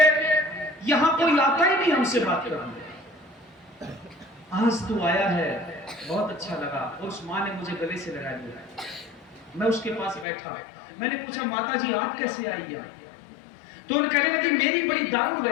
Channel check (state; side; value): drops out; right; at 10.2 s